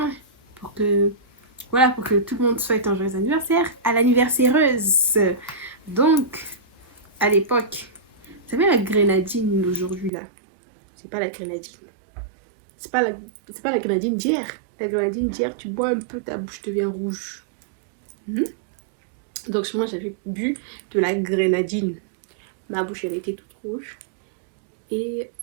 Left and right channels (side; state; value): left; drops out; at 10.1 s